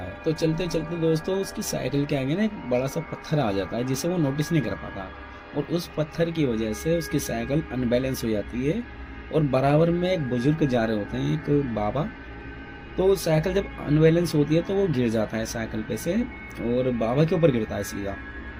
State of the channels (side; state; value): both; identical; correlation 1.00